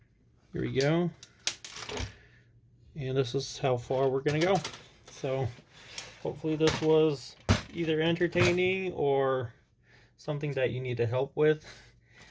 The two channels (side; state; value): both; identical; correlation 1.00